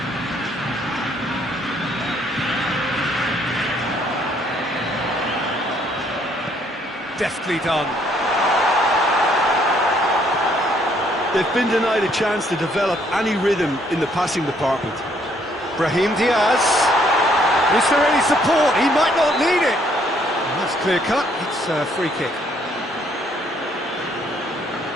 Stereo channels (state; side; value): normal; both; correlation 0.67